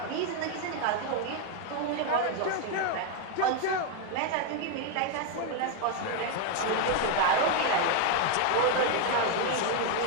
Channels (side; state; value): both; different; correlation 0.01